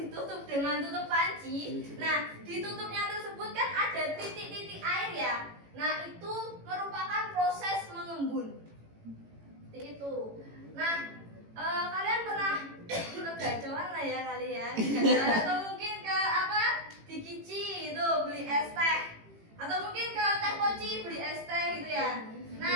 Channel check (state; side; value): late; left; 18 ms